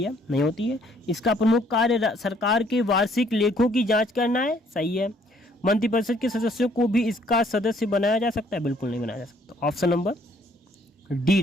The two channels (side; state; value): both; normal; correlation 0.63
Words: है, नहीं होती है। इसका प्रमुख कार्य सरकार के वार्षिक लेखों की जांच करना है, सही है। मंत्रिपरिषद के सदस्यों को भी इसका सदस्य बनाया जा सकता है, बिल्कुल नहीं बनाया जा सकता। ऑप्शन नंबर डी